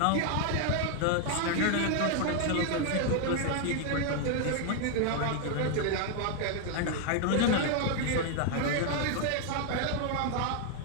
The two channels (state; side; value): different; both; correlation 0.00